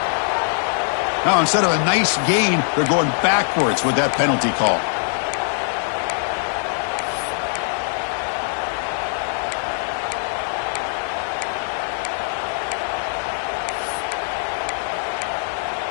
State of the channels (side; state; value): right; silent; 61 dB below the other